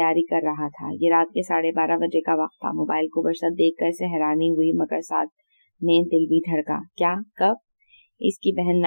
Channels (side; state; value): both; inverted; correlation -1.00